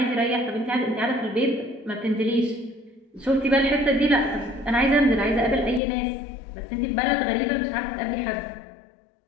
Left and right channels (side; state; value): right; drops out; at 5.8 s